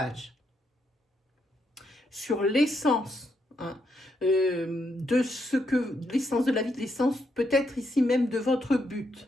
sur l'essence de ce que l'essence de la vie, l'essence peut-être ici même de votre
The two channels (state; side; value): normal; both; correlation 0.79